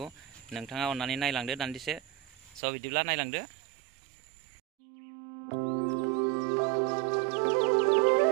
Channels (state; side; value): drops out; left; at 2.6 s